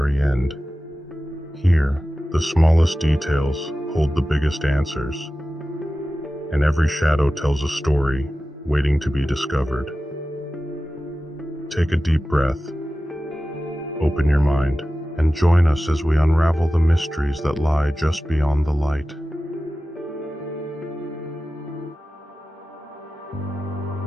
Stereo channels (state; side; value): normal; both; correlation 0.95